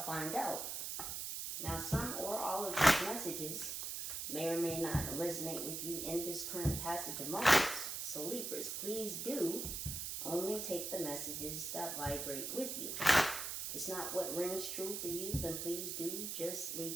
find out. Now, some or all of these messages may or may not resonate with you in this current passage of moments. So Libras, please do only take the messages that vibrate with you. If it's not what rings true for you, then please do just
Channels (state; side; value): noise; right; hiss, 4 dB below the sound